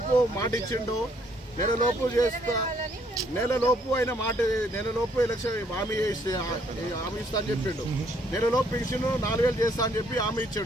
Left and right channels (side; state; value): both; normal; correlation 0.67